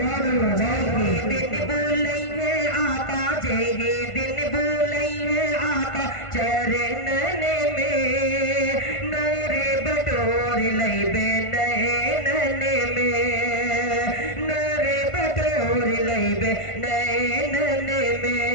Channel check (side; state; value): right; late; 1.5 ms